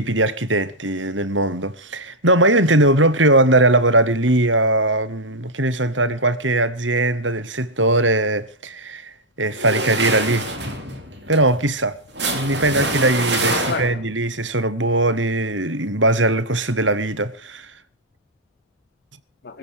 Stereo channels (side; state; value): both; normal; correlation -0.03